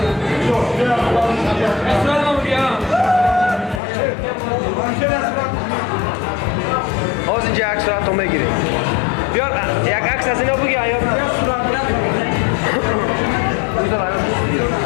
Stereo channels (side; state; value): right; drops out; at 3.8 s